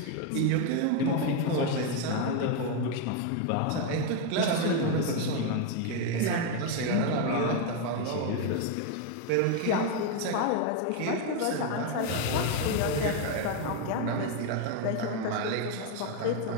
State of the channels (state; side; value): different; both; correlation 0.01